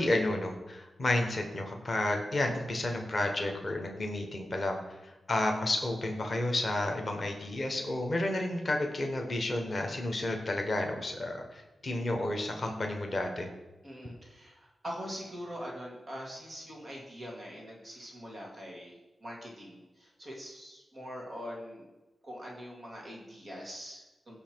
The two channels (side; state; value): both; normal; correlation 0.92